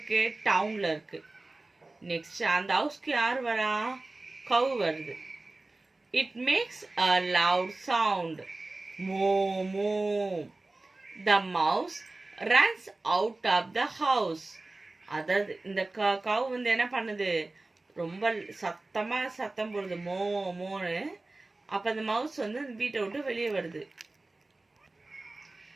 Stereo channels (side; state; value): left; quieter; 3.1 dB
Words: டவுன்ல இருக்கு. நெக்ஸ்ட் அந்த ஹவுஸ்க்கு யார் வரா? கவ் வருது. It makes a loud sound. Moo moo. The mouse runs out of the house. அதாவது இந்த கவ் வந்து என்ன பண்ணுது? ரொம்ப சத்தமா சத்தம் போடுது, மோ மோன்னு. அப்ப அந்த மவுஸ் வந்து வீட்டை விட்டு வெளியே வருது.